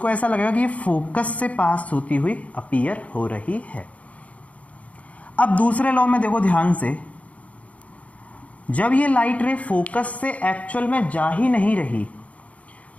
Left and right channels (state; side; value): late; right; 0.067 ms